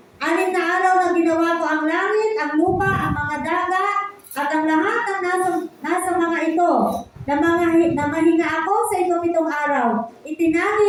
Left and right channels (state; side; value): identical; both; correlation 1.00